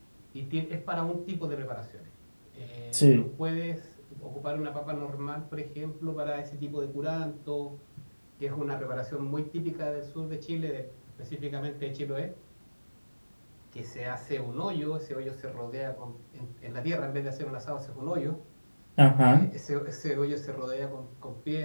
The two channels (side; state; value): both; inverted; correlation -1.00